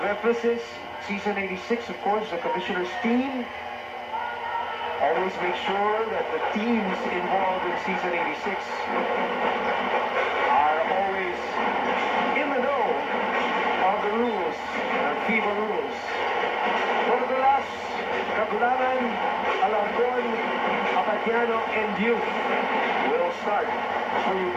Season 86, of course, the commissioner's team. Always make sure that the teams involved in season 86 are always in the know of the rules, the FIBA rules. Borgolas, Kagulangan, Alarcon, Apatiano, and Youth will start for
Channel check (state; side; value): identical; both; correlation 1.00